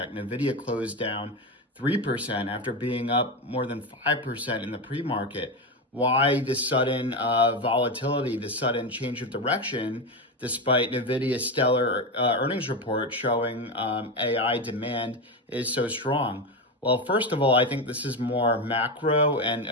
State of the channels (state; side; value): normal; both; correlation 0.15